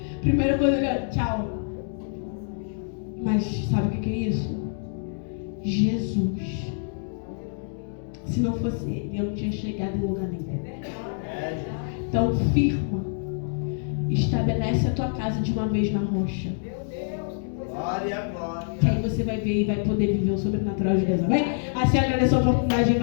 Primeira coisa, tchau. Mas sabe o que é isso? Jesus. Se não fosse ele, eu não tinha chegado em lugar nenhum. Então firma. Estabelece a tua casa de uma vez na rocha. Glória, glória. Que aí você vai ver e vai poder viver o sobrenatural de Deus. Amém? Assim agradeço a oportunidade em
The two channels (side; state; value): right; silent; digital silence